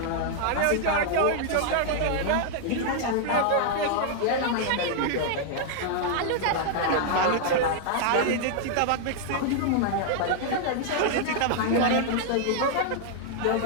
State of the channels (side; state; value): both; different; correlation 0.00